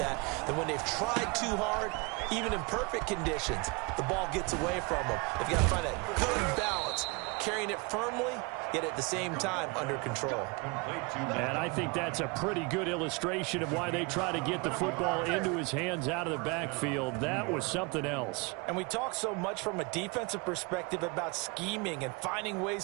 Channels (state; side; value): quieter; left; 28.6 dB